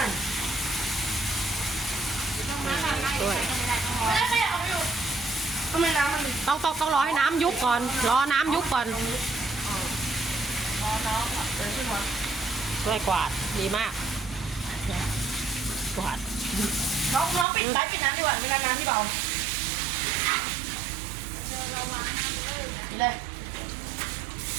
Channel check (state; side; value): drops out; left; at 17.4 s